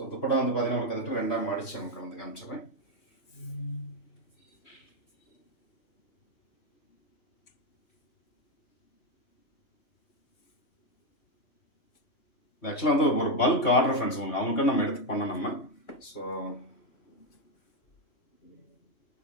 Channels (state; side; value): late; right; 2.9 ms